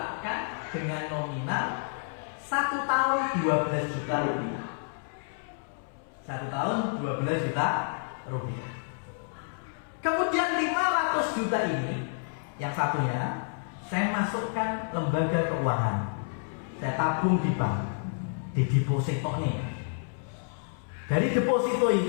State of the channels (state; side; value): silent; right; 58 dB below the other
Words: dengan nominal 1 tahun 12 juta rupiah. 1 tahun 12 juta rupiah. Kemudian 500 juta ini, yang satunya saya masukkan lembaga keuangan. Saya tabung di bank, di deposito nih. Dari deposito